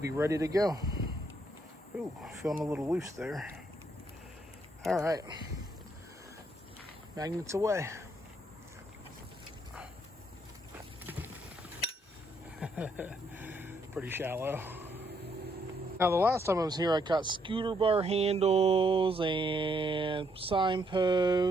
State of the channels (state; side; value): normal; both; correlation 0.72